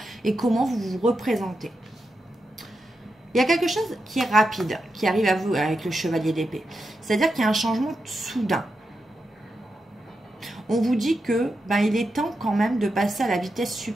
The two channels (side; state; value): both; normal; correlation 0.87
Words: et comment vous vous représentez. Il y a quelque chose qui est rapide, qui arrive à vous avec le chevalier d'épée. C'est-à-dire qu'il y a un changement soudain. On vous dit que il est temps quand même de passer à la vitesse